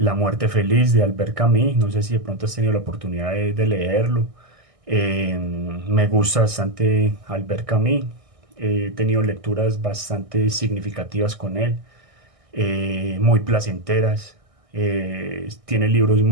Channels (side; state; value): left; late; 1.6 ms